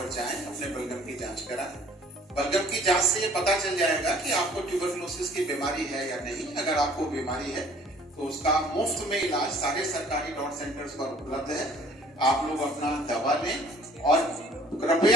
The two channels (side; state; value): both; normal; correlation 0.54